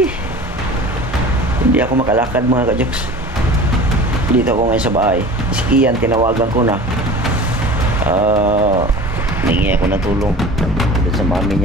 Hindi ako makalakad mga ka-jokes. Dito ako ngayon sa bahay. Si Kian tinawagan ko na. Ningi ako ng tulong doon sa mami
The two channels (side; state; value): both; normal; correlation 0.39